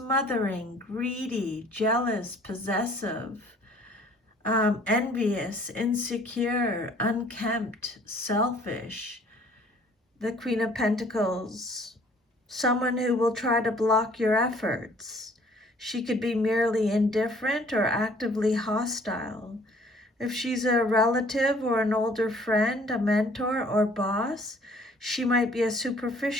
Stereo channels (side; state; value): both; normal; correlation 0.56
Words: greedy, jealous, possessive, envious, insecure, unkempt, selfish. The Queen of Pentacles, someone who will try to block your efforts. She could be merely indifferent or actively hostile. If she's a relative or an older friend, a mentor or boss, she might be a